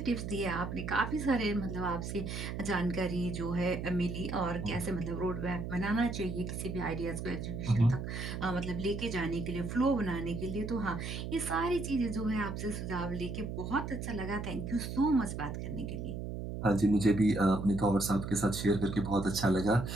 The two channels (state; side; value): noise; right; hum, 5 dB below the sound